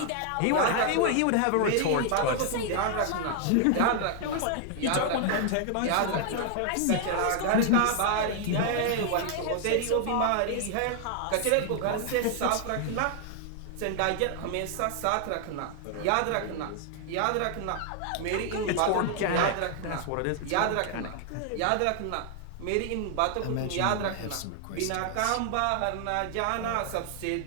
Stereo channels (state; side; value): different; both; correlation 0.00